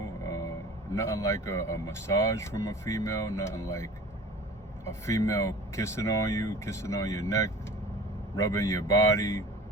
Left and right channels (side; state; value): both; normal; correlation 0.41